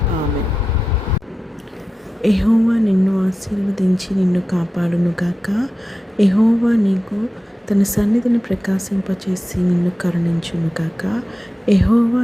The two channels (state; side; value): normal; both; correlation 0.93